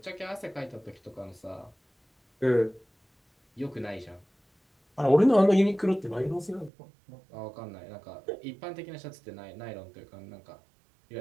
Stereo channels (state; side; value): drops out; left; at 6.7 s